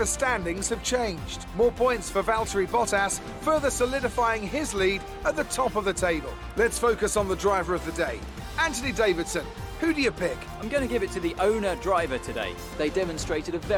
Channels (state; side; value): identical; both; correlation 1.00